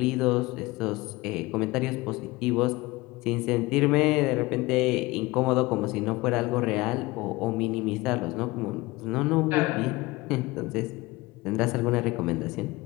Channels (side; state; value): right; quieter; 21.3 dB